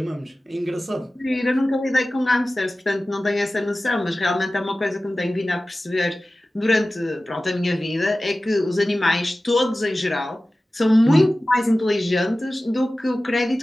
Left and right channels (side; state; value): both; normal; correlation 0.96